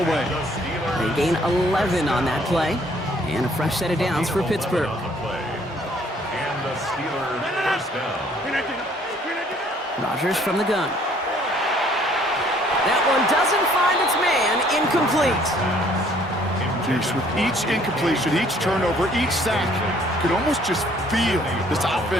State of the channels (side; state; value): both; normal; correlation 0.61